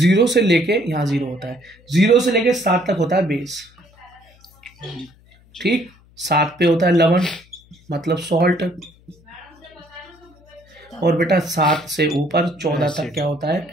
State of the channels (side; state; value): left; noise; hum, 29 dB below the sound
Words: से लेके यहाँ 0 होता है, 0 से लेके 7 तक होता है बेस। ठीक, 7 पे होता है लवण, मतलब सॉल्ट, और बेटा 7 से ऊपर 14 तक क्या होता है?